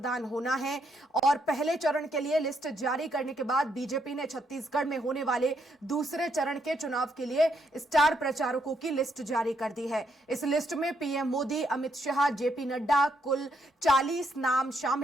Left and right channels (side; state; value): both; normal; correlation 0.75